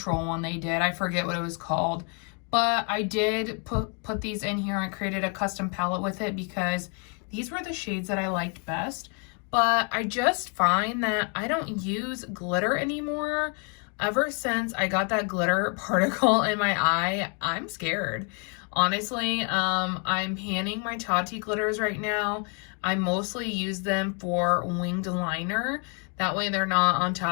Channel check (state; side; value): quieter; right; 37.4 dB